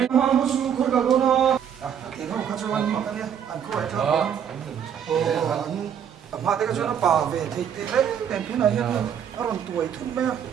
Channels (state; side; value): quieter; left; 8.5 dB